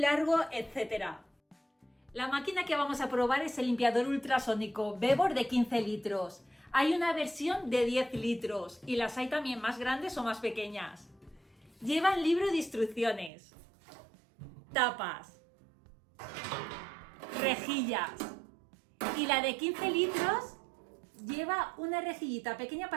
etcétera. La máquina que vamos a probar es el limpiador ultrasónico Bebor de 15 litros. Hay una versión de 10 litros y las hay también más grandes o más pequeñas. Llevan libro de instrucciones, tapas, rejillas y la de 15 litros lleva una rejillita pequeña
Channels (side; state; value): left; drops out; at 13.3 s